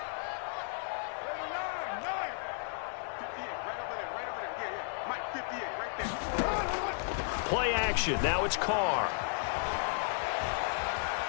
Play action. Now it's Carr.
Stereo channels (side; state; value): right; silent; digital silence